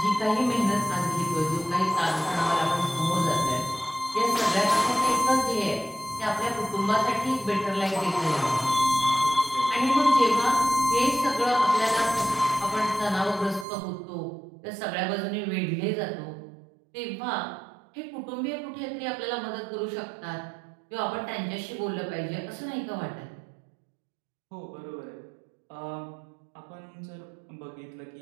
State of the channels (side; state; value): left; drops out; at 13.7 s